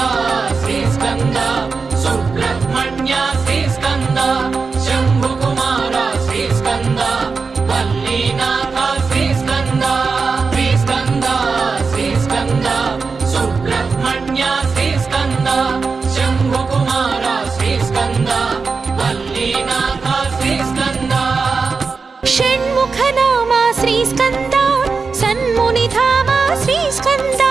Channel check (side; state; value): left; quieter; 4.7 dB